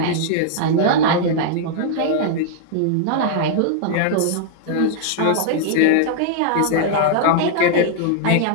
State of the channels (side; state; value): both; different; correlation -0.01